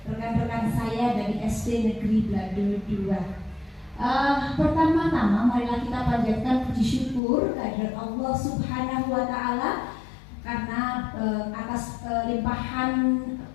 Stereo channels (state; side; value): drops out; right; at 7.2 s